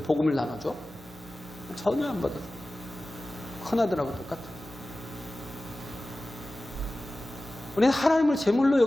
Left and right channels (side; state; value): both; normal; correlation 0.96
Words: 나눠줘? 전혀 안 받아요. 큰아들하고 똑같아요. 우리는 하나님을 제물로